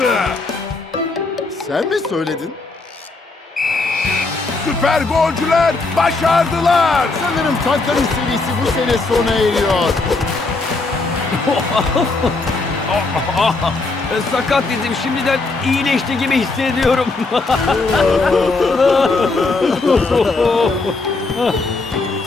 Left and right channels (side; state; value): right; quieter; 3.6 dB